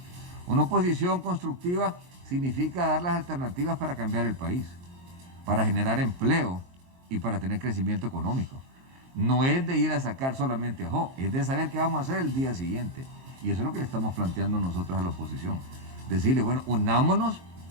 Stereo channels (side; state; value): left; late; 23 ms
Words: Una oposición constructiva significa dar las alternativas para cambiar el país, para generar empleo y para tener crecimiento económico. No es de ir a sacar solamente a Jo, es de saber qué vamos a hacer el día siguiente. Y eso es lo que le estamos planteando nosotros a la oposición. Decirle, bueno, unámonos